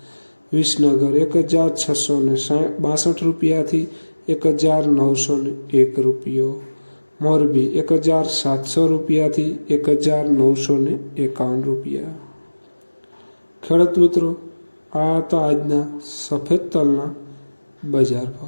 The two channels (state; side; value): inverted; both; correlation -1.00